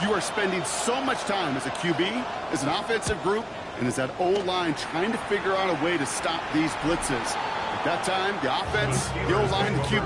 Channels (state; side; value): identical; both; correlation 1.00